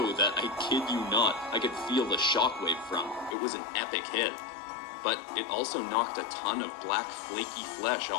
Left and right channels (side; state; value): right; drops out; at 3.4 s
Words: that, I kid you not, I could feel the shockwave from. It was an epic hit. But it also knocked a ton of black flaky flesh